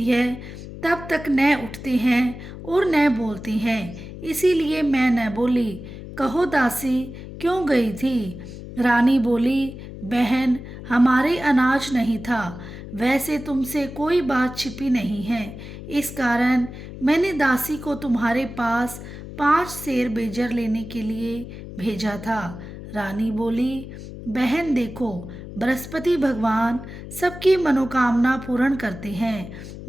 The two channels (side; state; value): left; noise; hum, 12 dB below the sound